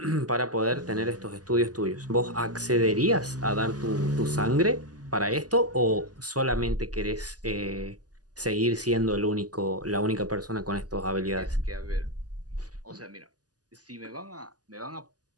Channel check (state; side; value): late; left; 0.68 ms